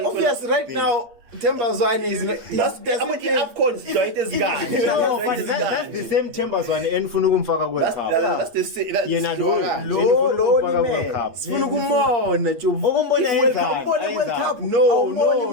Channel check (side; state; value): left; late; 8.5 ms